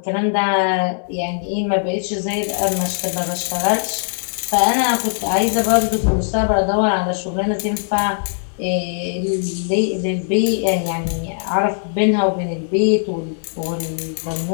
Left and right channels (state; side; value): silent; right; digital silence